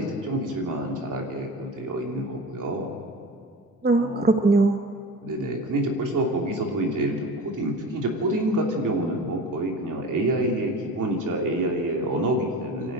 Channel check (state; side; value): normal; both; correlation 0.33